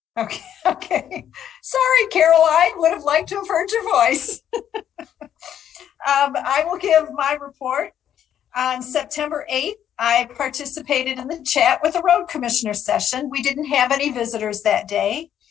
Okay. Sorry, Caroline. Would have liked to have heard your voice. I will give my report. On September 8th, I participated in the chat with the road commissioner session. We didn't have any visitors that day.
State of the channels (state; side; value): quieter; right; 10.0 dB